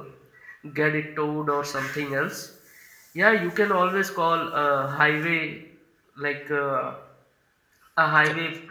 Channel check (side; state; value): both; identical; correlation 1.00